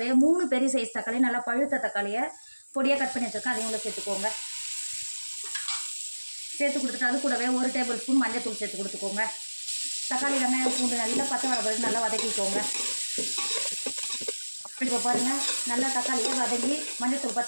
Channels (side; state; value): both; inverted; correlation -1.00